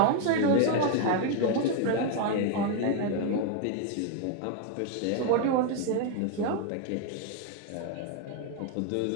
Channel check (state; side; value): different; both; correlation 0.01